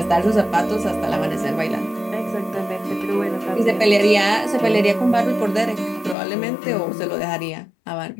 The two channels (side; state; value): right; drops out; at 6.2 s